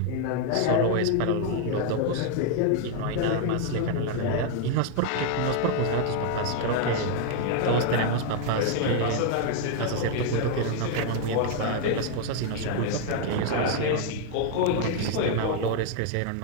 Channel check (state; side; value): different; both; correlation 0.00